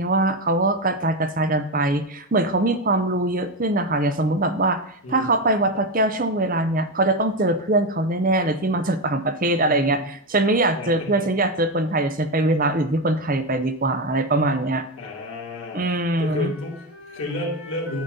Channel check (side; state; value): both; normal; correlation 0.13